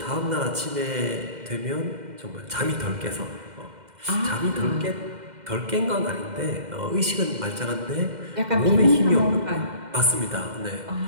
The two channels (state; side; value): late; left; 2.1 ms